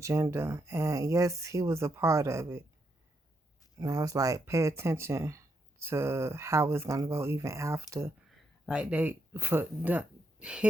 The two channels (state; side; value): normal; both; correlation 0.79